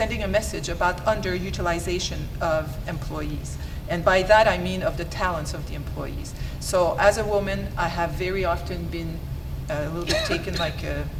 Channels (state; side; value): identical; both; correlation 1.00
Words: a message about underutilization of employees. And by that I mean of the talents of the employees. So as a woman, I have very often been a little bit taken like